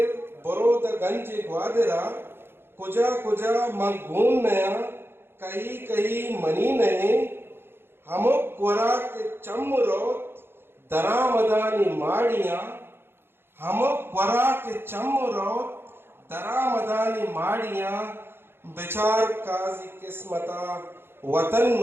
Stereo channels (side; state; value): left; late; 0.11 ms